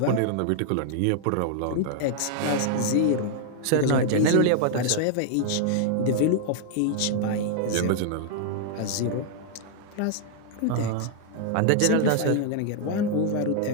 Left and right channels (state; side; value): different; both; correlation 0.00